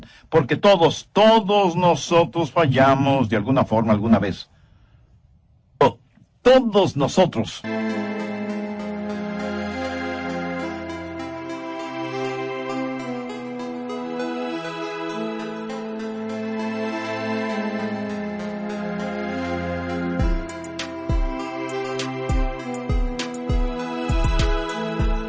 porque todos nosotros fallamos de alguna forma alguna vez. Todos nosotros.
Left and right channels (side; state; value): both; identical; correlation 1.00